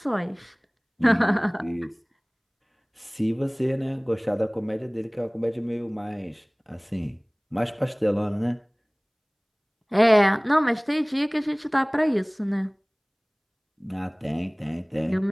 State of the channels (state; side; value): identical; both; correlation 1.00